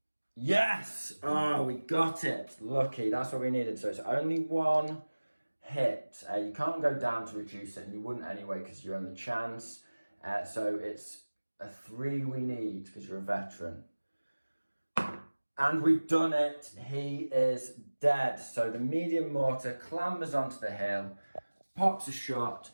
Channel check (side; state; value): both; inverted; correlation -1.00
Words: Yes! Oh, we got it. Lucky, that's what we needed. So it's only 1 hit. You can't go down to reduce it, and you wouldn't anyway because you're on the chance. So it's a 3 we need because you're a veteran. And we've done it. He is dead. So the medium mortar clambers onto the hill, pops a shot,